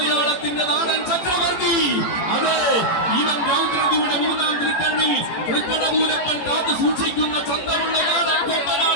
നാടൻ ചക്രവർത്തി. അതെ, ഇവൻ രൗദ്രതിയുടെ മൂന്നാം തിരുക്കണ്ണിൽ തൃക്കടപൂരപ്പൻ കാത്തു സൂക്ഷിക്കുന്ന ചന്തമുള്ള നാടൻ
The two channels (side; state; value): right; late; 18 ms